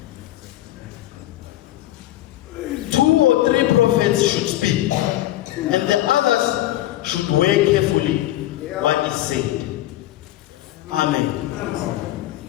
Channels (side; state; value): right; quieter; 14.8 dB